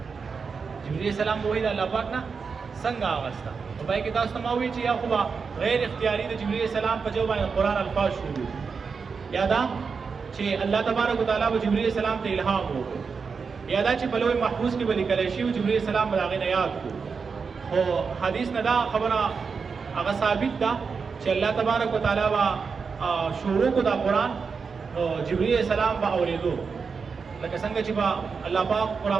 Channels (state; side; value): quieter; left; 5.3 dB